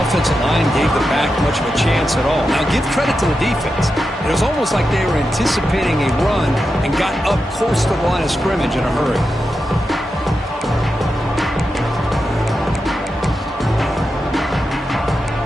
offensive line gave the back much of a chance at all. Now, give credit to the defense. It was almost like they were anticipating a run and got up close to the line of scrimmage in a hurry.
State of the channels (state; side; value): normal; both; correlation 0.89